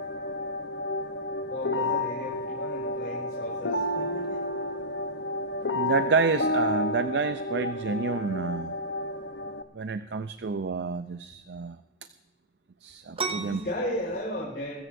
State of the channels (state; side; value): normal; both; correlation -0.15